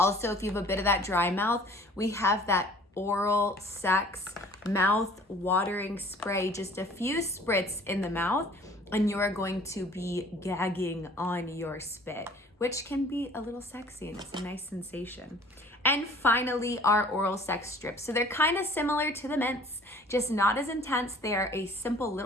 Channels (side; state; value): both; normal; correlation 0.51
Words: if you have a bit of that dry mouth, we have that oral sex mouth watering spray, just a few spritz in the mouth, and you are going to be gagging on your spit, which can be a little sexy, and it's a nice sensation. And finally, our oral sex strips. So they're kind of similar to the mints, just not as intense. They are a simple